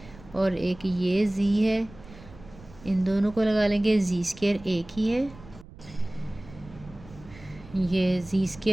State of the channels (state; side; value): noise; right; rumble, 20 dB below the sound